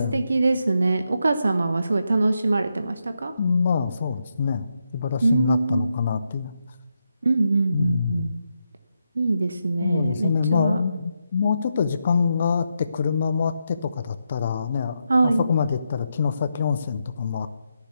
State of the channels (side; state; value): both; inverted; correlation -0.83